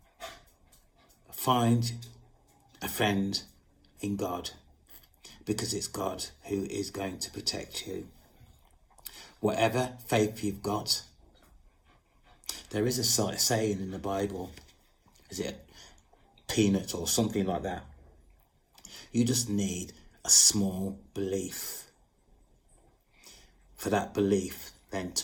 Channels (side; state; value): both; identical; correlation 1.00